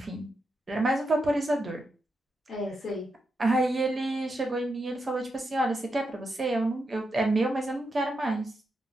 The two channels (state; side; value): normal; both; correlation 0.85